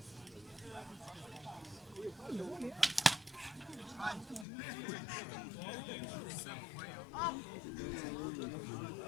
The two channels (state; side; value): drops out; right; at 4.5 s